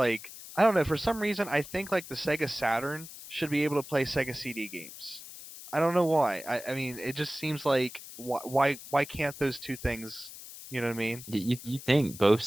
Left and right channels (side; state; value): left; noise; hiss, 14 dB below the sound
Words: I don't know, for some reason I think like the Sega Saturn should be able to play Sega CD games. I don't know why. I mean, it just seems like why can't those two things, you know what I mean? You think both